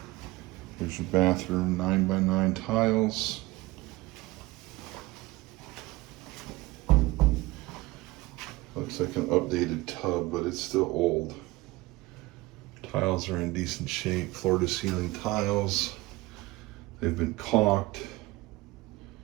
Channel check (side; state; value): left; quieter; 20.5 dB